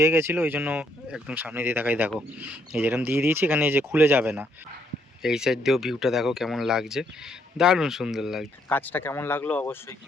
গেছিলো। ওই জন্য একদম সামনে দিয়ে দেখাই, দেখো এই যেরকম দিয়ে দিয়েছি, এখানে এই যে খুলে যাবে না। এই সাইড দিয়েও ভিউটা দেখো কেমন লাগছে, দারুণ সুন্দর লাগছে। কাজটা কেমন লাগলো অবশ্যই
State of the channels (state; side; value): normal; both; correlation 0.72